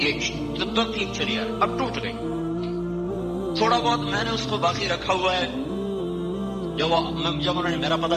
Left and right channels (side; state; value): both; identical; correlation 1.00